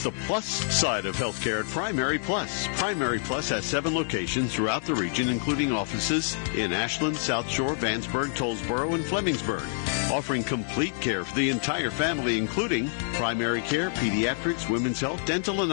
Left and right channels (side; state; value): right; silent; 60 dB below the other